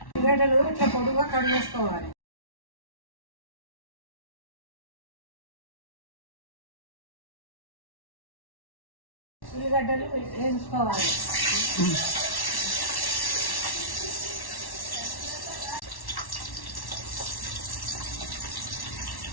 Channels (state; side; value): late; right; 1.1 ms